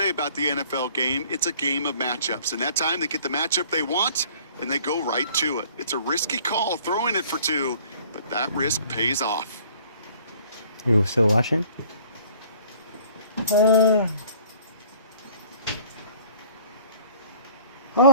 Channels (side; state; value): both; inverted; correlation -0.53